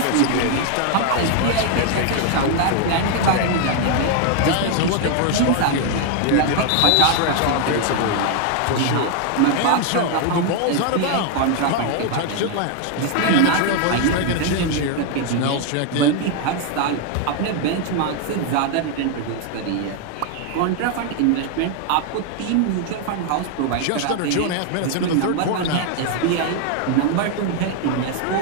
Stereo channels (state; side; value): different; both; correlation 0.00